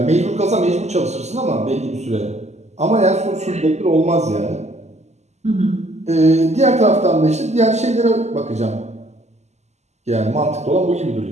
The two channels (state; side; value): late; left; 0.33 ms